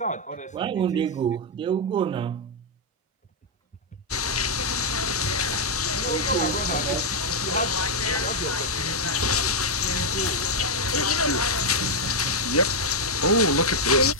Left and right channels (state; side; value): normal; both; correlation -0.02